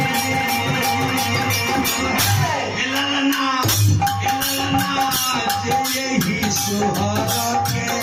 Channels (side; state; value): both; identical; correlation 1.00